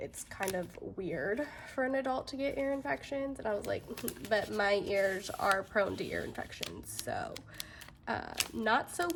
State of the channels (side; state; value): both; identical; correlation 1.00